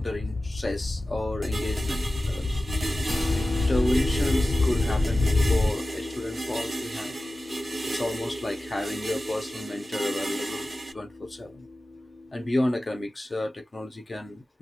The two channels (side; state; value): both; normal; correlation 0.95